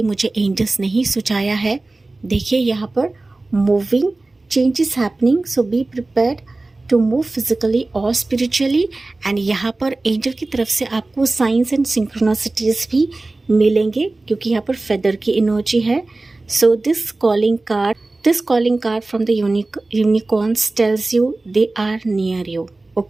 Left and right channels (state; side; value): quieter; left; 3.1 dB